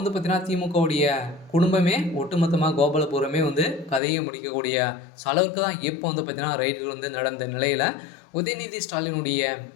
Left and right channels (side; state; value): right; drops out; at 4.0 s